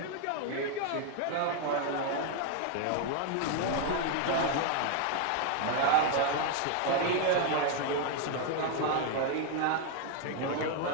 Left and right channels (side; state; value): both; different; correlation 0.00